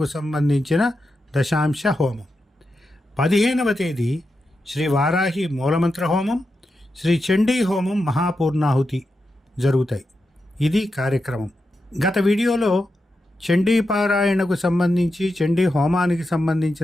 సంబంధించిన దశాంశ హోమం. 15వ తేదీ శ్రీ వారాహి మూలమంత్ర హోమం, శ్రీ చండీ హోమం, మహాపూర్ణాహుతి జరుగుతాయి. ఇది కార్యక్రమం. గత వీడియోలో చండీ పారాయణకు సంబంధించి, చండీ హోమానికి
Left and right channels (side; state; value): both; normal; correlation 0.88